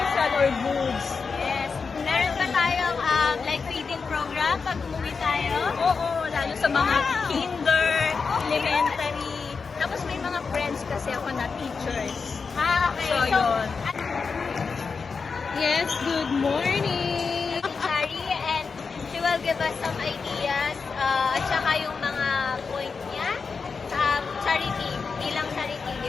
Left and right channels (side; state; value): right; quieter; 5.1 dB